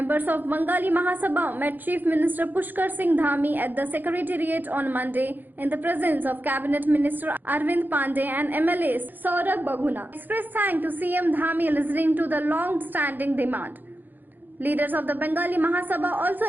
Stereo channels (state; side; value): late; left; 0.088 ms